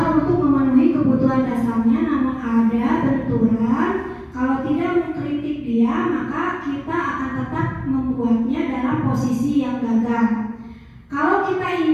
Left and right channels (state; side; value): identical; both; correlation 1.00